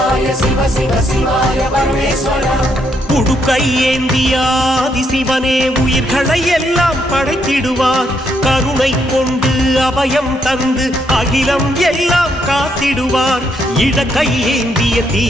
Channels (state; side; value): normal; both; correlation 0.75